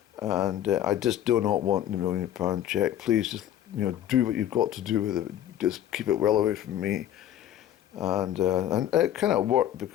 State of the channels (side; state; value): right; quieter; 11.6 dB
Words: and I just do not want the £1 million check. Please just, you know, do what you've got to do with it. Just keep it well away from me. And it kind of worked,